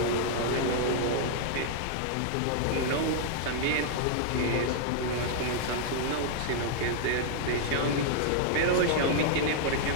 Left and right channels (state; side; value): different; both; correlation -0.01